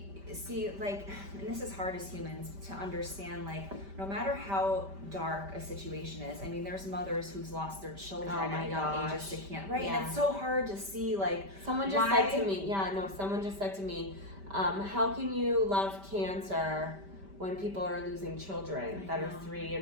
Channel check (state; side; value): late; left; 5.1 ms